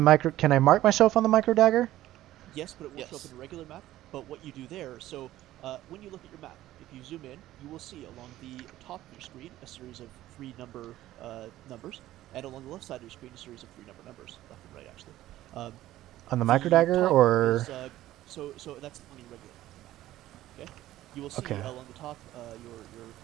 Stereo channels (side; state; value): left; quieter; 14.6 dB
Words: can I mark myself on the microdagger? Yes, but it will show up in a regular map. But what you do there, so when you look at your map, if you zoom in, you will see along the top of your screen a series of 3 numbers, and along the left side of your screen a series of 3 numbers, left and right actually. On the microdagger, or? So that's on your regular map. Okay. You will see along the top